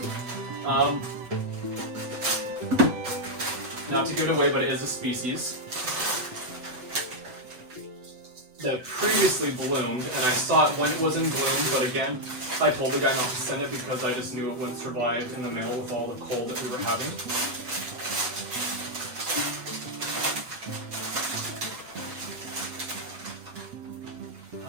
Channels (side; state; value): left; late; 8.0 ms